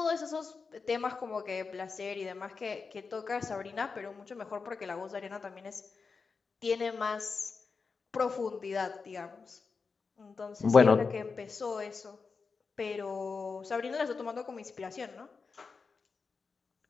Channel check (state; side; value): quieter; right; 4.9 dB